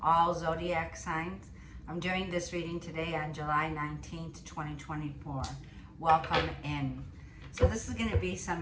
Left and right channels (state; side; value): identical; both; correlation 1.00